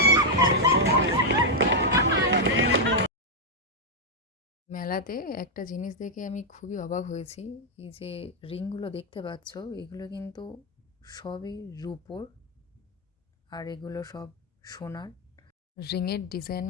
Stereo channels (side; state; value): both; normal; correlation -0.02